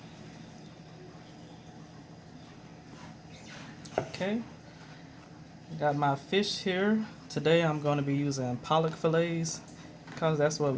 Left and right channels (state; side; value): identical; both; correlation 1.00